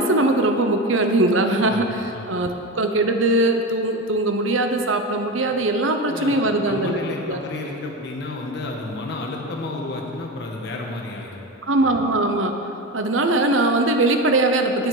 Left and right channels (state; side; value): normal; both; correlation 0.22